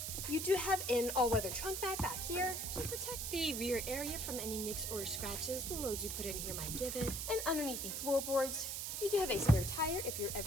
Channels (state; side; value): noise; right; hiss, 3 dB below the sound